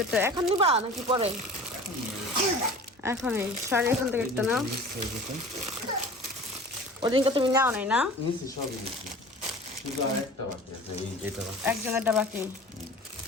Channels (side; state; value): both; normal; correlation 0.40